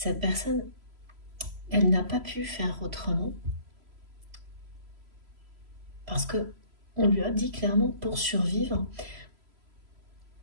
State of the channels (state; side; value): late; left; 3.0 ms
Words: personne, elle n'a pas pu faire autrement parce que on lui a dit clairement, pour survivre,